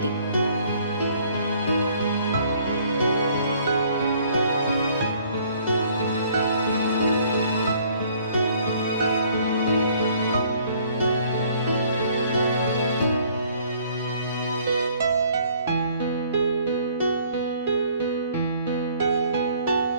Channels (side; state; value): both; inverted; correlation -0.59